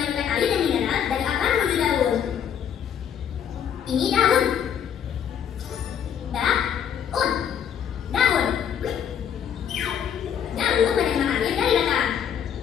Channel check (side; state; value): right; quieter; 8.6 dB